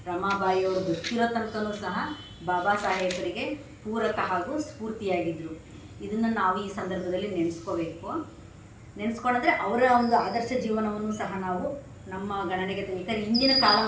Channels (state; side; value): identical; both; correlation 1.00